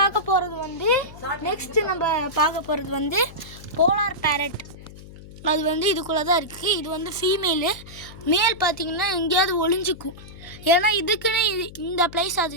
போகிறது வந்து போலார் பேரட். அது வந்து இதுக்குள்ளே தான் இருக்குது. இது வந்து ஃபீமேலு. மேல் பார்த்திங்கன்னா எங்கேயாவது ஒளிஞ்சிக்கும். ஏன்னா இதுக்குன்னு இந்த ப்ளேஸ்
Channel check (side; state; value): left; noise; hum, 17 dB below the sound